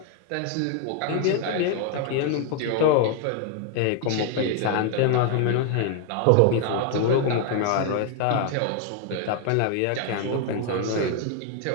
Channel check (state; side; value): different; both; correlation 0.01